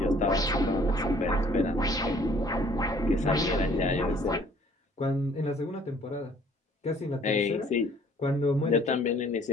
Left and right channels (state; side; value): normal; both; correlation 0.57